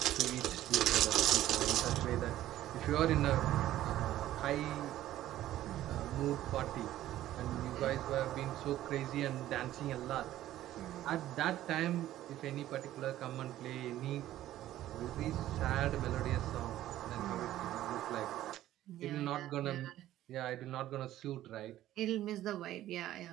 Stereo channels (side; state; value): left; quieter; 13.7 dB